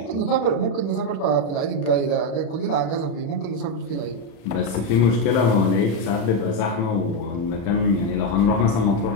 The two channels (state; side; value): late; right; 36 ms